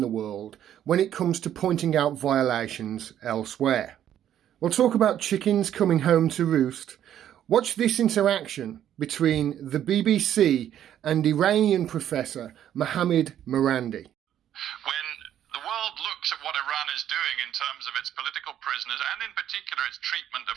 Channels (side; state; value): left; quieter; 10.8 dB